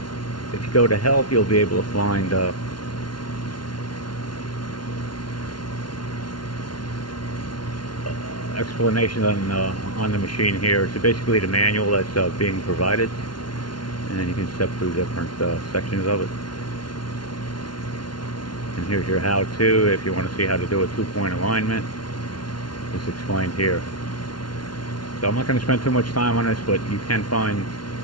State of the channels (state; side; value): late; right; 0.71 ms